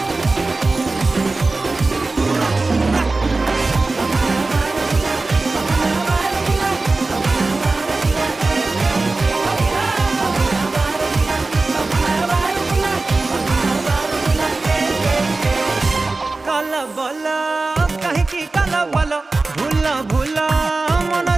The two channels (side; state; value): left; quieter; 3.5 dB